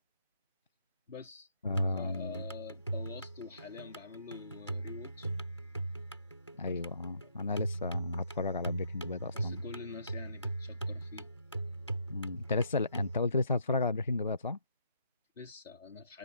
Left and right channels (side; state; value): both; inverted; correlation -0.71